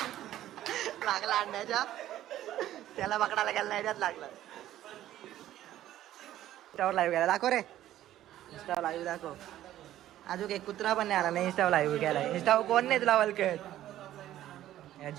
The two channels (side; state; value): left; quieter; 13.1 dB